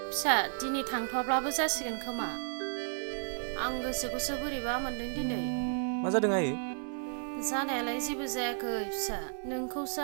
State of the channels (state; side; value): silent; left; digital silence